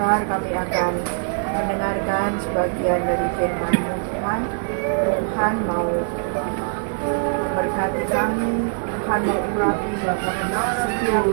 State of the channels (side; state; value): left; silent; 64 dB below the other